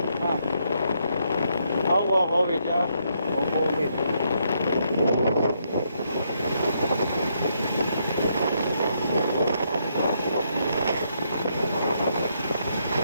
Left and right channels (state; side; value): inverted; both; correlation -0.76